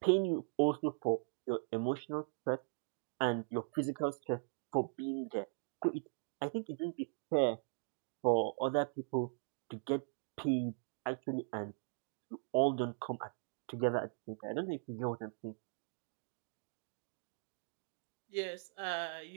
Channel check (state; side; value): silent; left; digital silence